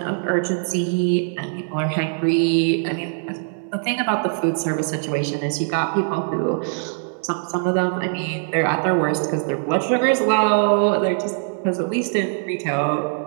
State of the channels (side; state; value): left; silent; digital silence